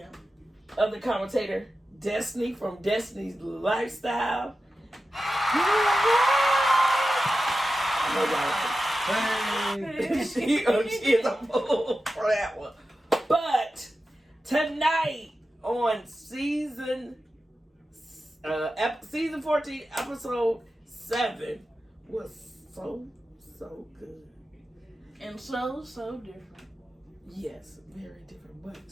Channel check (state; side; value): normal; both; correlation 0.92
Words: other commentator, Destiny from Destiny's Lifestyle. She is a fool for that one. But tonight on season 14, episode 7 was so good. And so different. Yes, very different, but